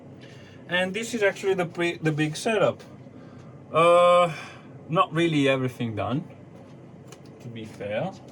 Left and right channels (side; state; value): both; identical; correlation 1.00